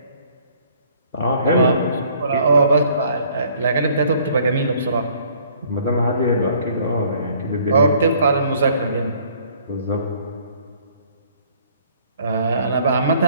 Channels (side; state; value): both; inverted; correlation -0.59